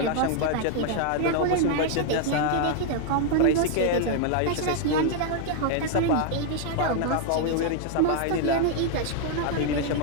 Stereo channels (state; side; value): different; both; correlation 0.00